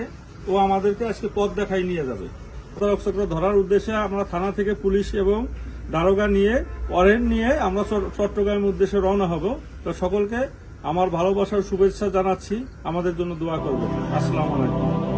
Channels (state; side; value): identical; both; correlation 1.00